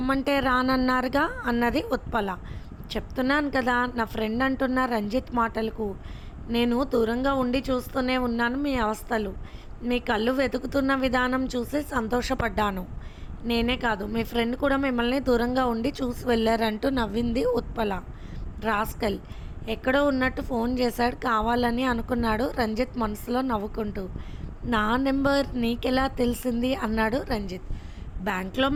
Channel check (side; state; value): both; identical; correlation 1.00